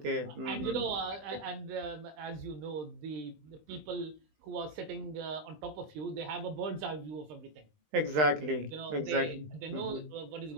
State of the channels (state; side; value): late; left; 20 ms